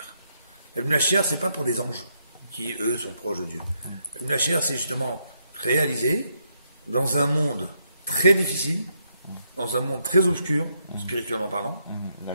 La Mashiach, c'est pas pour des anges qui, eux, sont proches de Dieu. La Mashiach, c'est justement réaliser dans un monde très difficile, dans un monde très obscur, spirituellement parlant,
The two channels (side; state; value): both; inverted; correlation -0.77